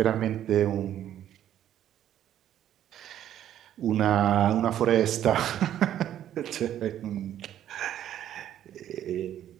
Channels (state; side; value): quieter; left; 11.2 dB